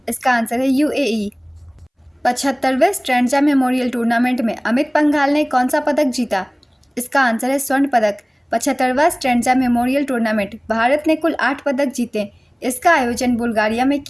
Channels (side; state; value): both; identical; correlation 1.00